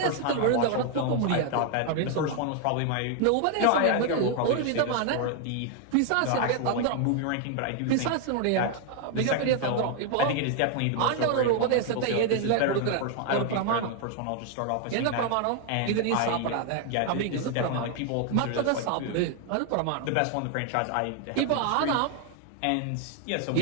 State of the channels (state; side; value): different; both; correlation 0.00